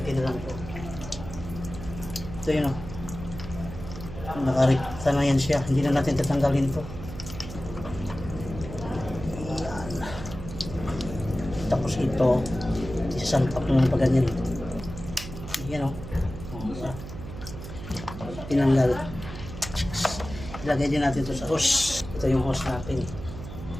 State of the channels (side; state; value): right; noise; hum, 11 dB below the sound